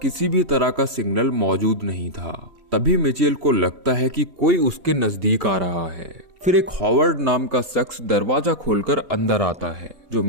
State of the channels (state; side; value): late; left; 3.0 ms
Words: किसी भी तरह का सिग्नल मौजूद नहीं था। तभी मिचेल को लगता है कि कोई उसके नजदीक आ रहा है। फिर एक हॉवर्ड नाम का शख्स दरवाजा खोलकर अंदर आता है, जो